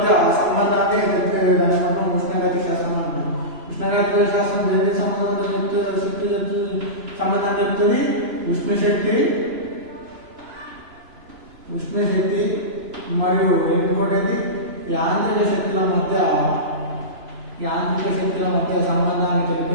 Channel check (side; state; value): left; late; 3.0 ms